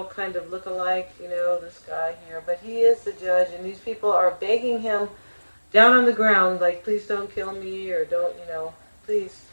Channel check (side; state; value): both; inverted; correlation -1.00